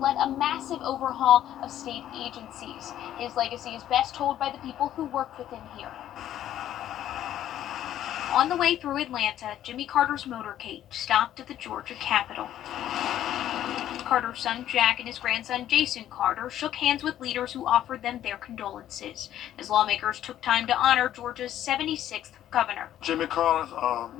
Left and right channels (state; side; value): quieter; right; 11.8 dB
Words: a massive overhaul of state agencies. His legacy is best told by the people who worked with him here. On the way through Atlanta, Jimmy Carter's motorcade stopped at the Georgia Capitol. Carter's son Jack and his grandson Jason Carter shook hands with leaders who offered them their condolences as lawmakers took time to honor Georgia's 76th governor. Jimmy Carter